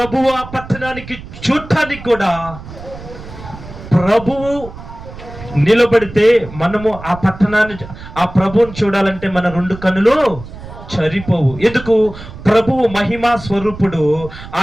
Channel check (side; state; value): right; noise; rumble, 14 dB below the sound